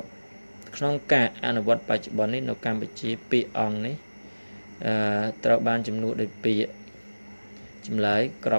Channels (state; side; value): inverted; both; correlation -1.00